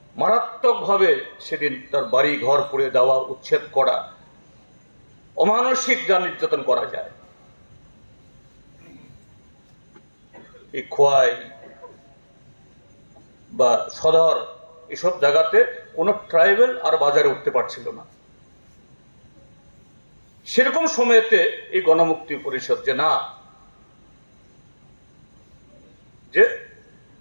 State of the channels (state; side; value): inverted; both; correlation -1.00